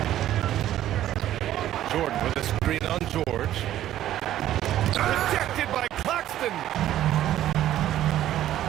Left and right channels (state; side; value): quieter; left; 12.7 dB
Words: Jordan with a screen on George. Rejected by Claxton.